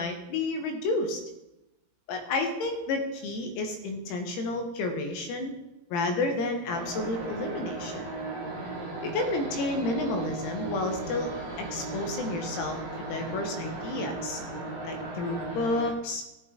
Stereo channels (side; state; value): right; late; 18 ms